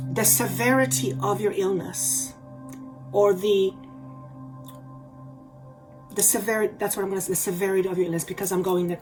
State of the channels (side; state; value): both; identical; correlation 1.00